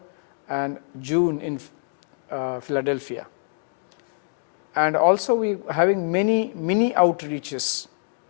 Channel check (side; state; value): right; silent; digital silence